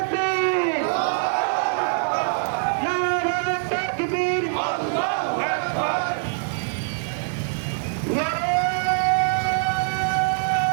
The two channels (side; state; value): left; silent; digital silence